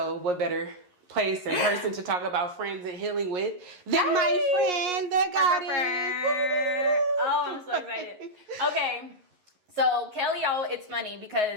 what better place and person to talk about friends and healing with than my friend, the goddess. Oh, I'm so excited. Okay. So Kelly, it's funny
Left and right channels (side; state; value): left; late; 11 ms